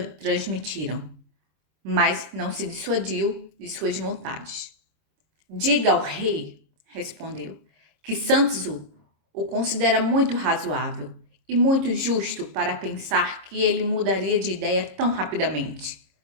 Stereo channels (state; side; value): late; left; 26 ms